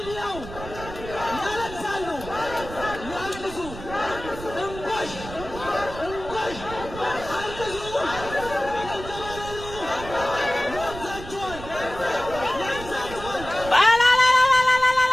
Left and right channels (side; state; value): right; noise; rumble, 12 dB below the sound